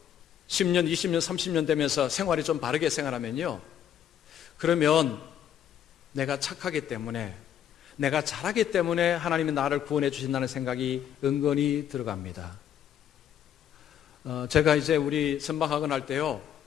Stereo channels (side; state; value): right; quieter; 9.8 dB